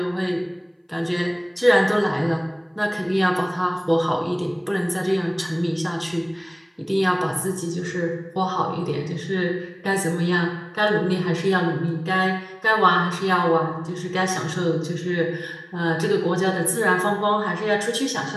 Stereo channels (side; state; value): both; identical; correlation 1.00